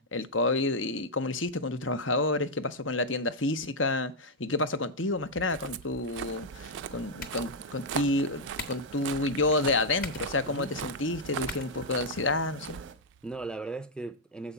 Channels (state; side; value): normal; both; correlation -0.02